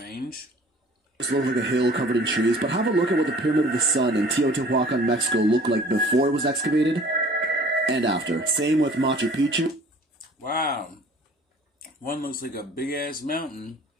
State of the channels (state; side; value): normal; both; correlation 0.50